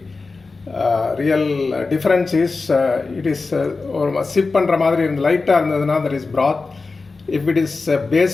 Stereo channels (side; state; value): right; quieter; 4.0 dB